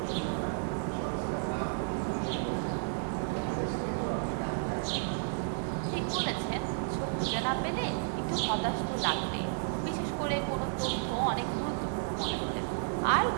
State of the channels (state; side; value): silent; left; 56 dB below the other